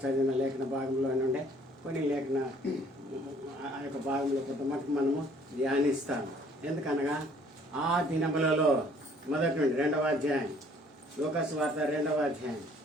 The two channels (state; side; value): normal; both; correlation 0.59